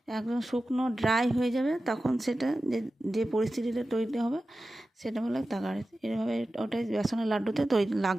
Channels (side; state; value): both; normal; correlation 0.94